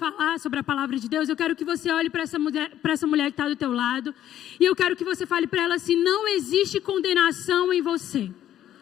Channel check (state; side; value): quieter; right; 11.6 dB